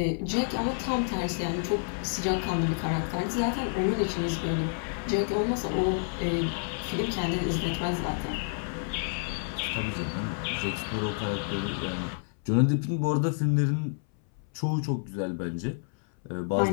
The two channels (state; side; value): silent; right; 58 dB below the other